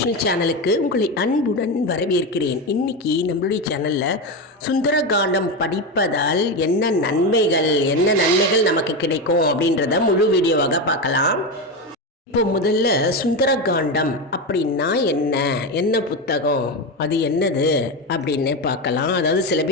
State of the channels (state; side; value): normal; both; correlation 0.15